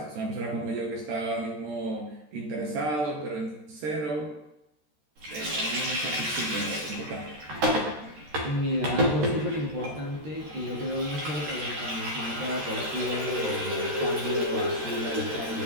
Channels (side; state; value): left; late; 13 ms